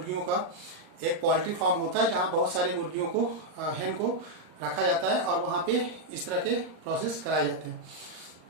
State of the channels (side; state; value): left; late; 39 ms